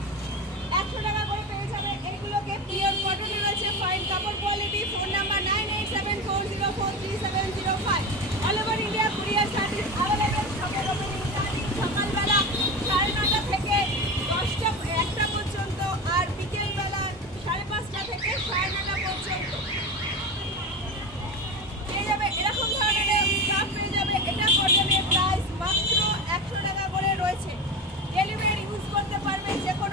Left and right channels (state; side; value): normal; both; correlation 0.24